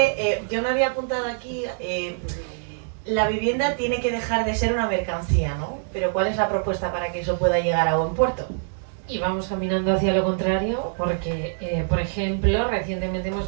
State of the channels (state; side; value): silent; left; digital silence